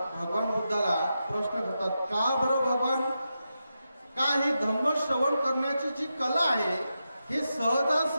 भगवान बुद्धाला प्रश्न करतात, का बरं भगवान, का ही धम्म श्रवण करण्याची जी कला आहे हे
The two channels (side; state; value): both; inverted; correlation -0.88